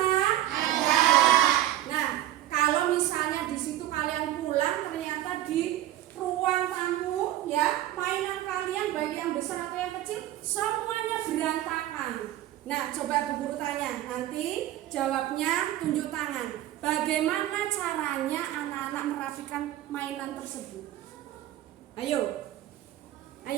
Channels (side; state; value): left; quieter; 13.5 dB